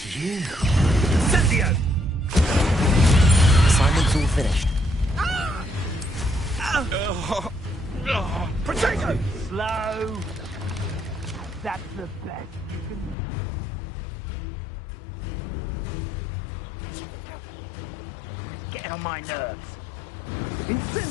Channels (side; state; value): right; drops out; at 13.2 s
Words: you. Incendio! Assignment's all finished. Protego! Slow. That's the best you can do, is it? Now you're just getting on my nerves.